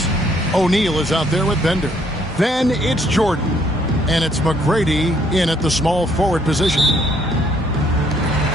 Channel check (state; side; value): normal; both; correlation 0.66